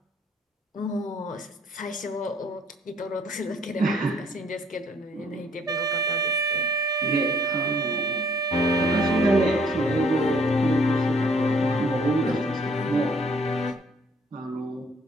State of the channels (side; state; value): both; normal; correlation 0.63